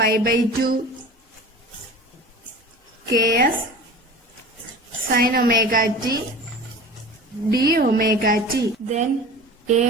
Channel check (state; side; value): normal; both; correlation 0.37